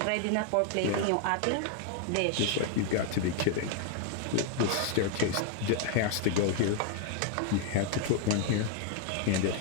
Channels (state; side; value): different; both; correlation 0.00